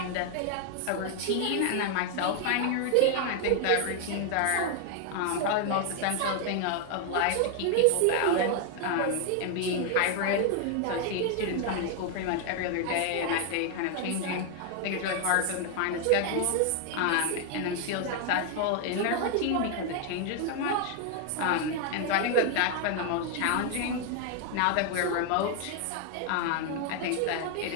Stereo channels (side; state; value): both; different; correlation 0.00